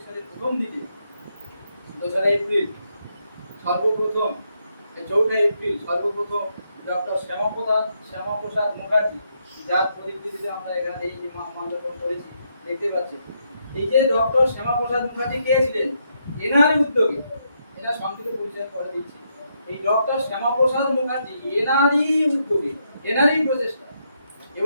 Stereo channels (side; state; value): both; inverted; correlation -0.78